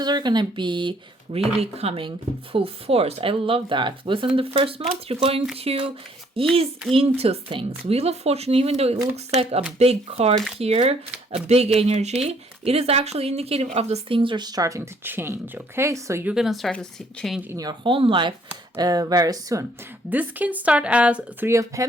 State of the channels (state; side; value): normal; both; correlation 0.64